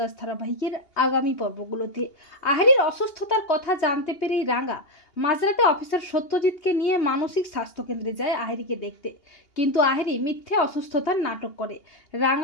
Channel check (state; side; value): late; right; 2.8 ms